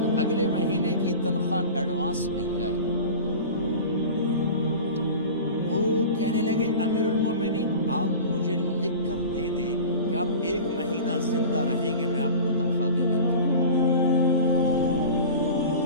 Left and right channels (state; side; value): inverted; both; correlation -0.35